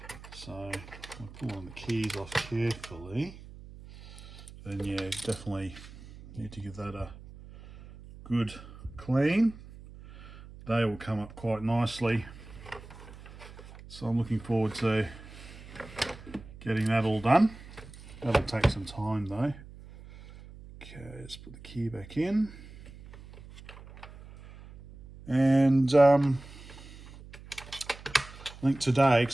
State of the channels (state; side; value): noise; right; hum, 17 dB below the sound